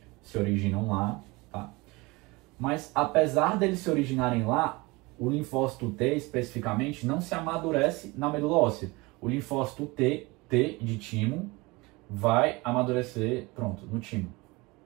se originam lá, tá? Mas, apesar deles se originarem lá, o linfócito T, especificamente, não se amadurece na medula óssea. O linfócito T de timo, vai amadurecer, pronto, no timo.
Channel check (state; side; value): quieter; left; 24.0 dB